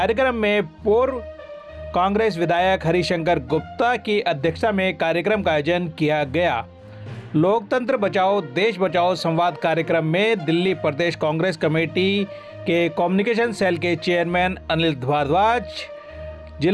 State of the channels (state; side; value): identical; both; correlation 1.00